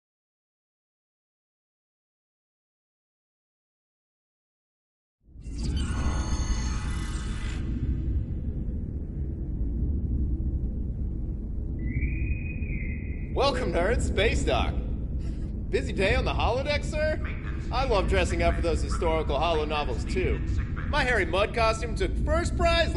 Welcome, nerds. Space Dock. Busy day on the holodeck, sir? I love dressing up for those historical holo novels, too. My Harry Mudd costume took first prize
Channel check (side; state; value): both; identical; correlation 1.00